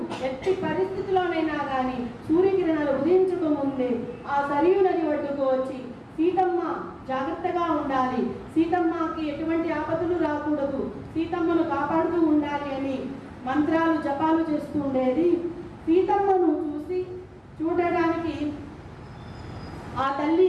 ఎట్టి పరిస్థితిలోనైనా కానీ సూర్యకిరణాలు ఉదయించక ముందే ఆ సరియు నది ఒడ్డుకు వచ్చి సీతమ్మ జాగ్రత్తగా ఉండాలి, సీతమ్మకి ఎటువంటి ఆపదలు రాకూడదు, సీతమ్మను కాపాడుతూ ఉండాలి అని మంత్రాలు జపాలు చేస్తూ ఉండేది. సీతమ్మను చూడడానికి ఆ తల్లి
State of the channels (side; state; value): both; identical; correlation 1.00